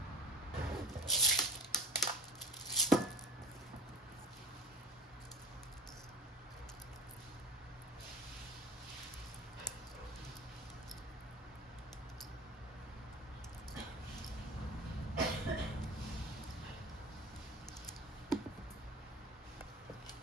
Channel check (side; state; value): both; normal; correlation 0.36